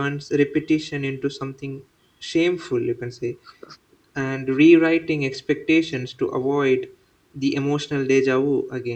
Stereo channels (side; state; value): both; identical; correlation 1.00